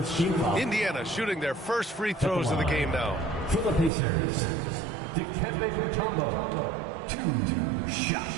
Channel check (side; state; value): left; drops out; at 3.9 s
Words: Indiana shooting their first free throws of the game now. For the Pacers, Dikembe Mutombo, 2